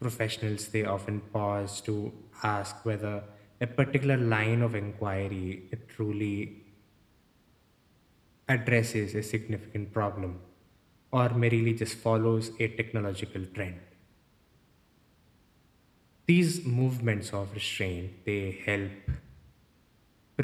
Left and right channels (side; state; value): both; identical; correlation 1.00